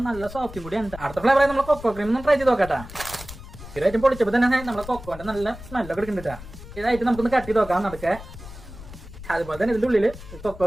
നല്ല സോഫ്റ്റും കൂടിയാണ്. അടുത്ത ഫ്ലേവർ നമ്മൾ കൊക്കോ ക്രീം ഒന്ന് ട്രൈ ചെയ്ത് നോക്കാട്ടാ. ഇതായിട്ട് പൊളിച്ചപ്പോൾ തന്നെ നമ്മളെ കൊക്കോന്റെ നല്ല സ്മെല്ലൊക്കെ എടുക്കുന്നുണ്ടാ. ഇതായിട്ട് നമുക്കൊന്ന് കട്ട് ചെയ്ത് നോക്കാം നടക്കെ. അതുപോലെ തന്നെ ഇതിന്റെ ഉള്ളില്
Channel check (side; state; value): left; noise; rumble, 14 dB below the sound